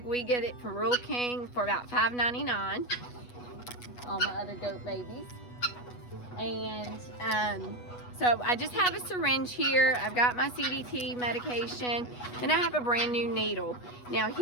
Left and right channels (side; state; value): right; late; 8.2 ms